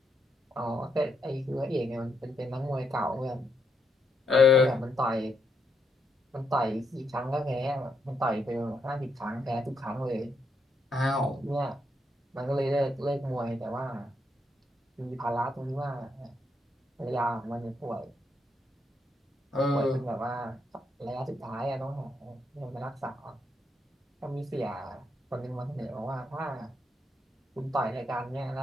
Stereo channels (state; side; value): normal; both; correlation 0.78